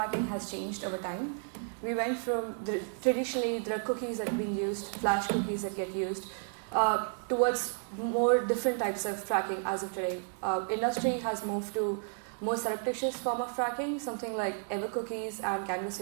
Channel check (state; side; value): silent; left; 55 dB below the other